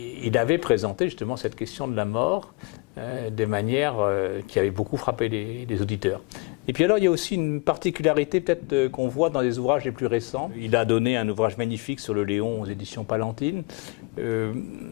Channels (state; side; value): quieter; right; 25.8 dB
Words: il avait présenté justement cette question de la mort de manière qui avait beaucoup frappé les auditeurs. Et puis alors il y a aussi une particularité peut-être qu'on voit dans les ouvrages les plus récents. Il a donné un ouvrage magnifique sur le Léon aux éditions Palantine.